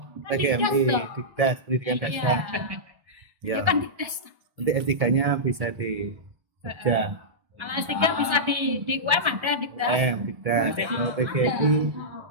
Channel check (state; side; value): late; left; 1.5 ms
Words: Kan PGMI, dikdas dong. Dikdas, pendidikan dasar. Iya. Ya. Bukan dikdas. Nanti S3-nya bisa di Jogja. Kalau S3 bisa di UM ada dikdas. Dikdas. Kalau